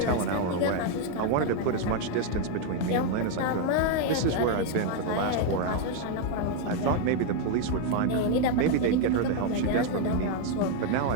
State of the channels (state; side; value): different; both; correlation 0.01